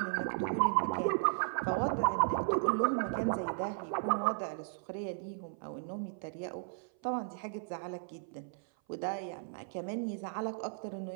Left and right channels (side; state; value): left; silent; 54 dB below the other